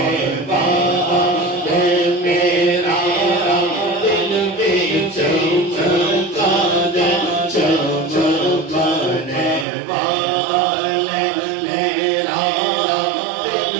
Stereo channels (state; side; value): drops out; left; at 9.7 s